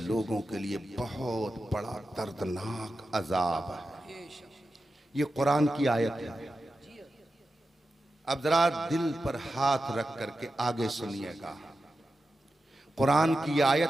के लिए बहुत बड़ा दर्दनाक अजाब है। ये कुरान की आयत है। अब जरा दिल पर हाथ रख करके आगे सुनिएगा। कुरान की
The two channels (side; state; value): both; normal; correlation 0.91